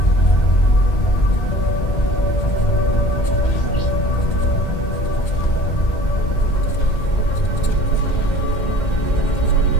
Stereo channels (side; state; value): right; late; 2.1 ms